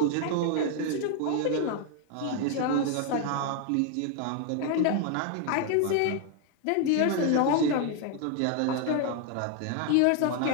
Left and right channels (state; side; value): different; both; correlation 0.01